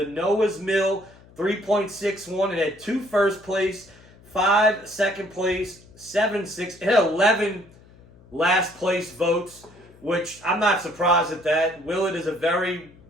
Noah's Mill, 3.61. It had 2 first place, 5 second place, 7 6. It had 11 last place votes, which I'm not surprised at that. Willett is a very,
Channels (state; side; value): noise; left; hum, 25 dB below the sound